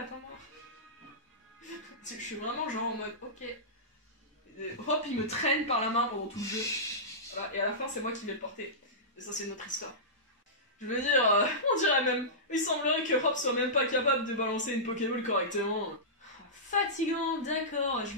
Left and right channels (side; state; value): both; normal; correlation -0.17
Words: Je suis vraiment genre en mode, ok. Hop, il me traîne par la main pendant tout le jeu. Voilà, et à la fin, c'est moi qui vais le porter. Et ça, c'est notre histoire. Je veux dire, on dirait même. Il semblerait que Hop soit même pas capable de balancer une Pokéball correctement. Fatigant, d'accord, je